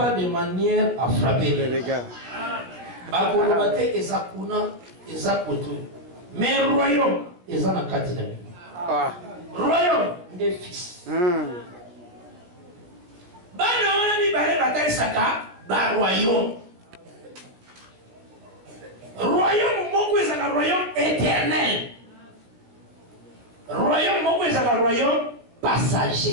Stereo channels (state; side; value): late; left; 17 ms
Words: de manière à frapper les gars. Bakolobate ezakuna ezakoto. Mais royaume ezana katina. Royaume des fils. Bana wana mi bale batali saka ba royaume. Royaume moko ezaka royaume éternel. Royaume moko ezaka royaume